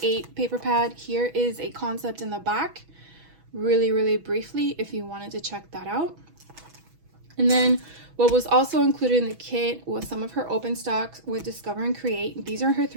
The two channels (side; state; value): left; late; 6.1 ms